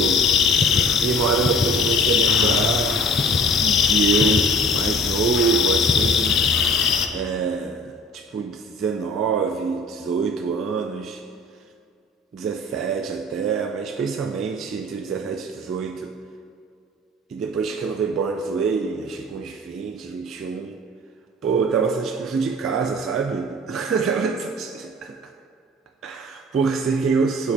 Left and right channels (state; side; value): normal; both; correlation 0.46